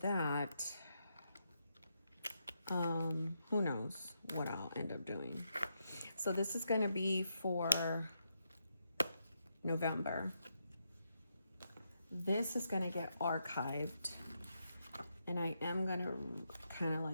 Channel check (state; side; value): inverted; both; correlation -0.82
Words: Who knows what I'll end up doing. So this is going to be for November. This is going to get archived. And I am going to kind of